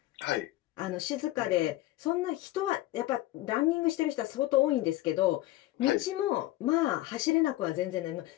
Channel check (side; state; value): right; quieter; 16.4 dB